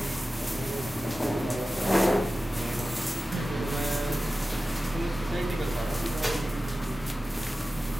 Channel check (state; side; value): normal; both; correlation 0.95